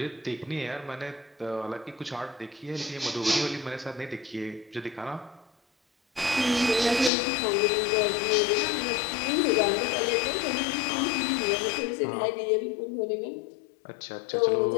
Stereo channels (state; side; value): drops out; right; at 7.1 s